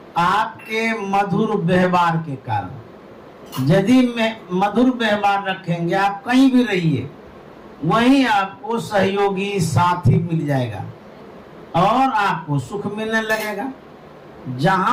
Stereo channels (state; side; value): identical; both; correlation 1.00